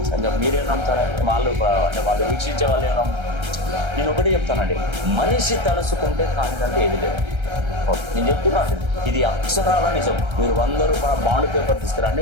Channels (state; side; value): late; left; 1.3 ms